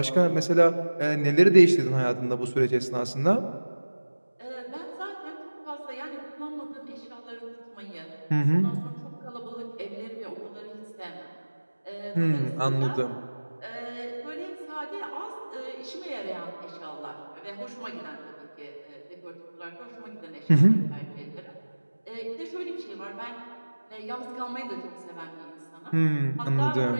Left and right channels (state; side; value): inverted; both; correlation -1.00